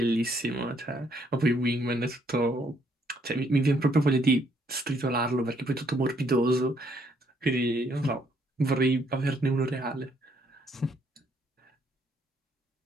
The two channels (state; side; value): normal; both; correlation 0.69